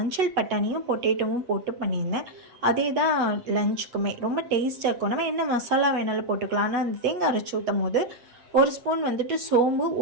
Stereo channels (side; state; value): left; late; 8.2 ms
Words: பட்டாணியும் பொட்டேட்டோவும் போட்டு பண்ணியிருந்தேன். அதே தான் லஞ்சுக்குமே ரொம்ப டேஸ்ட்டாக இருக்கும். நம்ம என்ன மசாலா வேணாலும் போட்டுக்கலாம். ஆனால் அந்த தேங்காய் அரைச்சி ஊற்றும் போது 1 ஸ்பூன் சோம்பு,